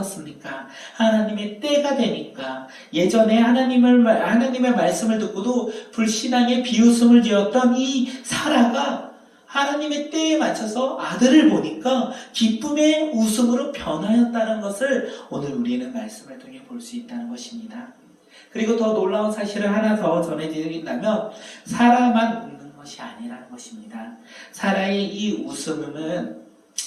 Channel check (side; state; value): both; identical; correlation 1.00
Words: 하나님의 때가 되니까, 예전에 하나님의 말씀을 듣고도 불신앙의 비웃음을 지었던 이 사라가 하나님의 때에 맞춰서 아들을 보니까 기쁨의 웃음으로 변하였다는 것을 오늘 우리는 말씀을 통해 볼 수 있다는 것입니다. 그리고 더 놀라운 사실을 하나 더 전해드린다면, 사라만 웃는 것이 아니라는 것입니다. 사라의 이 웃음은